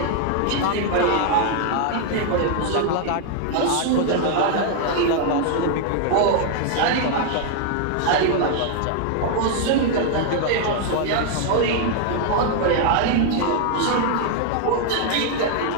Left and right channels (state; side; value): different; both; correlation 0.00